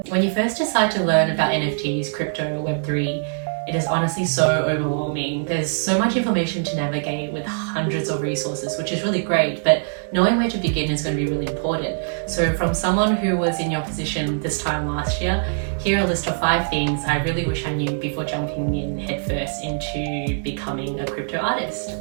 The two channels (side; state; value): left; silent; 64 dB below the other